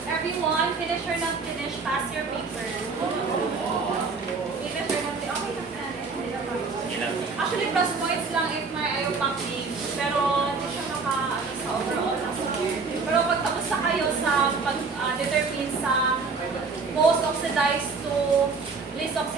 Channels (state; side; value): quieter; left; 4.5 dB